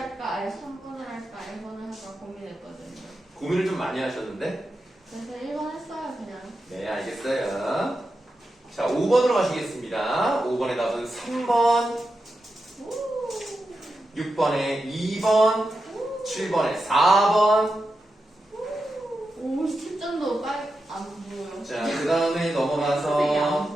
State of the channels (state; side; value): normal; both; correlation 0.89